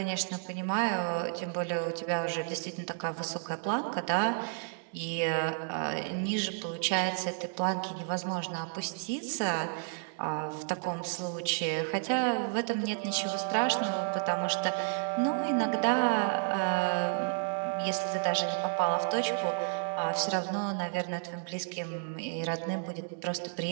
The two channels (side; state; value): left; silent; 57 dB below the other